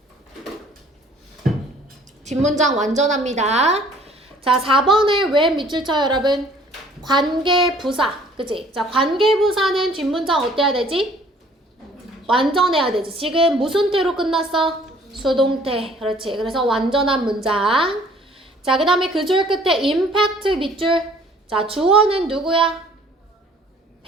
뒷문장 완전합니다. 자, 4번에 왜 밑줄 쳐요, 여러분? 관계부사. 그치? 자, 관계부사는 뒷문장 어때야 되지? 완전해야 되지. 지금 무슨 태로 끝났어? 수동태. 그렇지. 그래서 완전한 문장. 자, 그 다음에 그 줄 끝에 impact 밑줄. 자, 주어는 누구야?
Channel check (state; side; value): normal; both; correlation 0.56